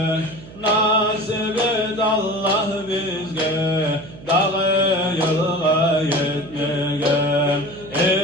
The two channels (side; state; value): right; noise; hum, 17 dB below the sound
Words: nasip et Allah bizge, dağı yılga yetmeye.